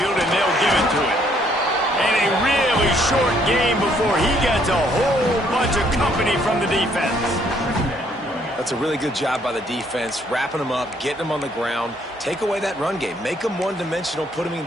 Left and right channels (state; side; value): normal; both; correlation 0.67